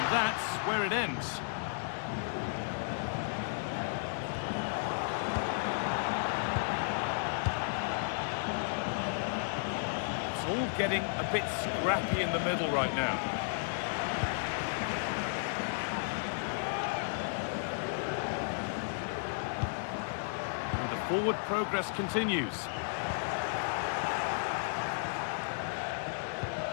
that's where it ends. It's all getting a bit scrappy in the middle right now. And the forward progress continues.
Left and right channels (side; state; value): right; silent; digital silence